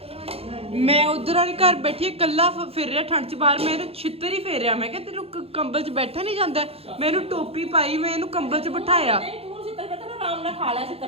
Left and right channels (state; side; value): late; left; 0.29 ms